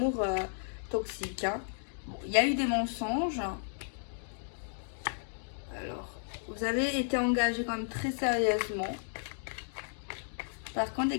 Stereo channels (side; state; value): right; silent; digital silence